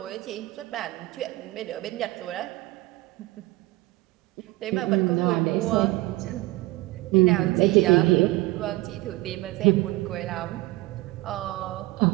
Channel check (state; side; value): quieter; left; 20.2 dB